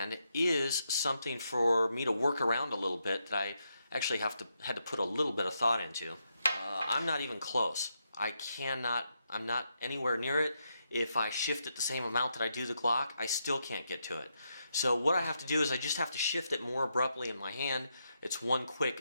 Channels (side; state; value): both; inverted; correlation -0.82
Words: is something for me to work around a little bit that I actually had to put a little bit of thought into. I'm not even close. I'm not anywhere near it. If I shift it the same amount that I do the Glock, I still can't get to it. So what I have to do is I just have to shift it more abruptly in my hand. It's one